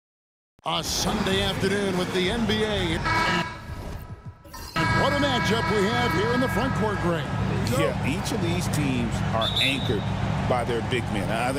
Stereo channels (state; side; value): identical; both; correlation 1.00